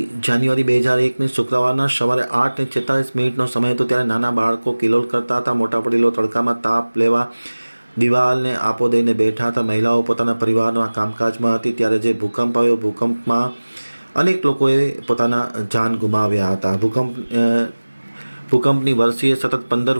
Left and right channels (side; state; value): both; inverted; correlation -1.00